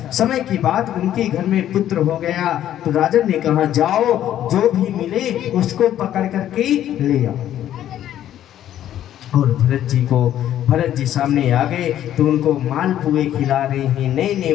समय की बात, उनके घर में पुत्र हो गया तो राजन ने कहा जाओ जो भी मिले उसको पकड़ करके ले आओ। और भरत जी सामने आ गए तो उनको मालपुए खिला रहे हैं, नए नए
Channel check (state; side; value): quieter; right; 11.6 dB